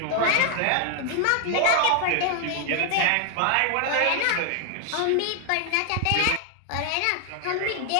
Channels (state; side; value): different; both; correlation 0.00